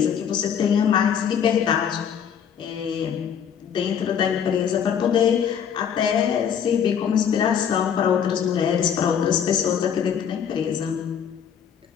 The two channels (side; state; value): right; quieter; 8.0 dB